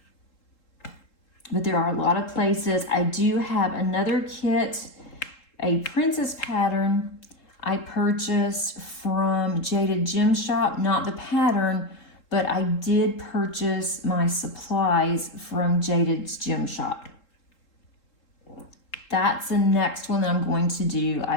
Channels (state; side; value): late; right; 3.7 ms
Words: But there are a lot of places. I do have another kit, a princess pattern I purchased from Jaded Gem Shop, not the pattern, but I did purchase my supplies from Jaded's Gem Shop. That's the next one that I'm going to do.